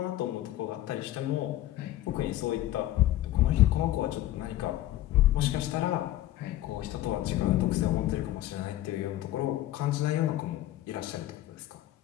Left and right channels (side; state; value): right; quieter; 14.5 dB